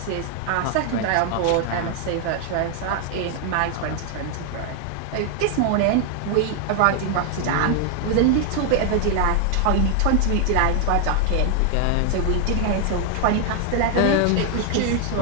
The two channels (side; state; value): both; different; correlation 0.00